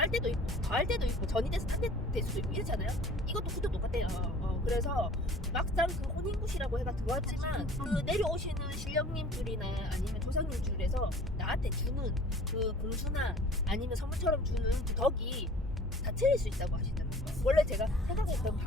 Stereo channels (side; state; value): both; normal; correlation 0.48